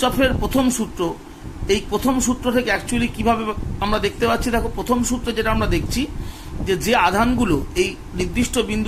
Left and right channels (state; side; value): identical; both; correlation 1.00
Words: প্রথম সূত্র, এই প্রথম সূত্র থেকে অ্যাকচুয়ালি কিভাবে আমরা দেখতে পাচ্ছি, দেখো প্রথম সূত্রে যেটা আমরা দেখছি যে আধানগুলো এই নির্দিষ্ট